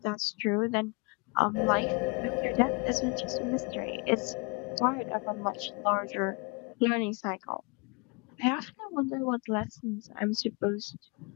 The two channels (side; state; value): right; quieter; 30.5 dB